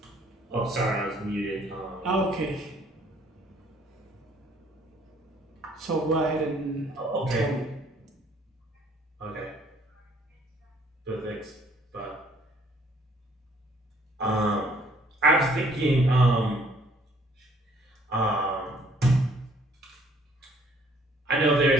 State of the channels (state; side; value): normal; both; correlation 0.61